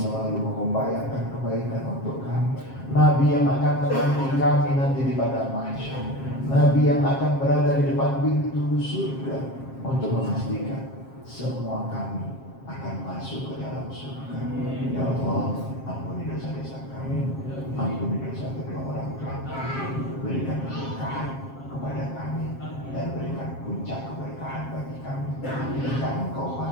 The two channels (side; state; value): right; late; 7.5 ms